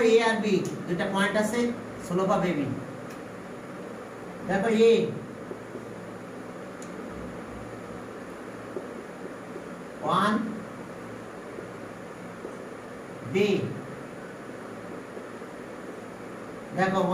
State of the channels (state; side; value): identical; both; correlation 1.00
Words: এ আর বি দুটো পয়েন্ট আছে, স্লোপ অফ এবি দেখো এ ওয়ান বি দেখো